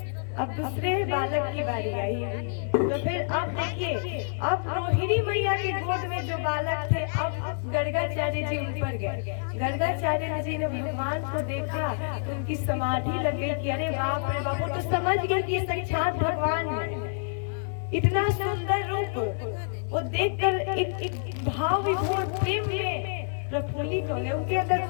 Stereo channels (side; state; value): right; silent; digital silence